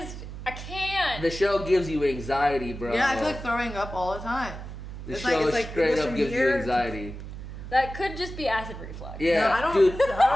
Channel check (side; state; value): right; noise; hum, 10 dB below the sound